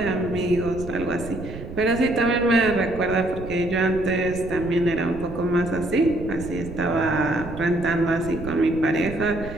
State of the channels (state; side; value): noise; right; rumble, 11 dB below the sound